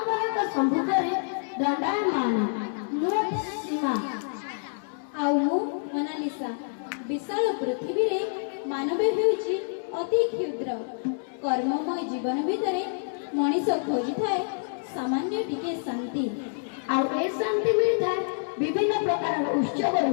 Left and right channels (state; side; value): silent; right; 60 dB below the other